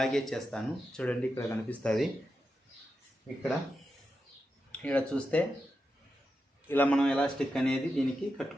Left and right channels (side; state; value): both; normal; correlation 0.88